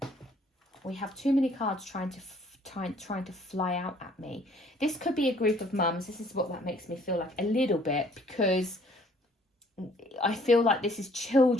We have too many cards trying to fly out at me. This could be a group of mums. This is what that makes me feel like a little bit, because I feel like this is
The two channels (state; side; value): normal; both; correlation 0.60